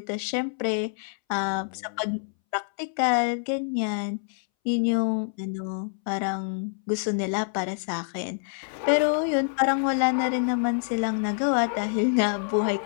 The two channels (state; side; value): silent; right; 61 dB below the other